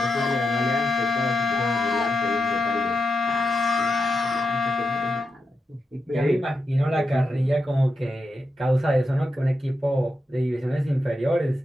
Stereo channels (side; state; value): both; normal; correlation 0.87